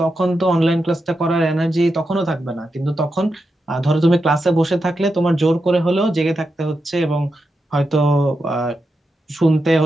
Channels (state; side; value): normal; both; correlation 0.87